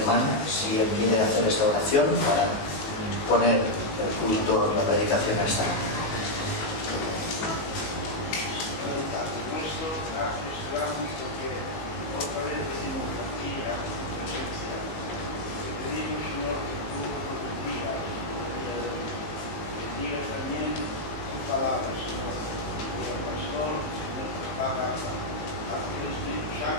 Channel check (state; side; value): late; right; 18 ms